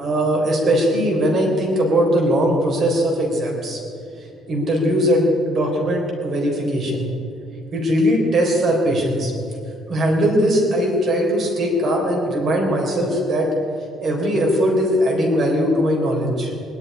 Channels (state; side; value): normal; both; correlation 0.66